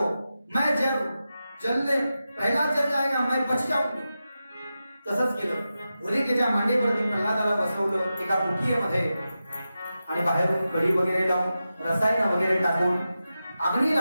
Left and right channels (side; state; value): both; inverted; correlation -0.92